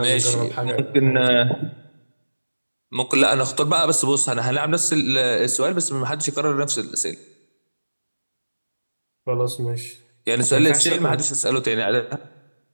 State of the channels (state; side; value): inverted; both; correlation -1.00